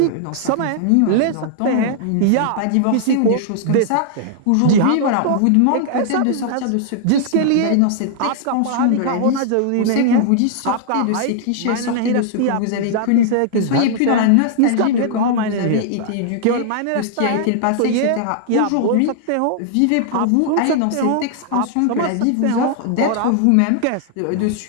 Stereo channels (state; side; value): different; both; correlation -0.01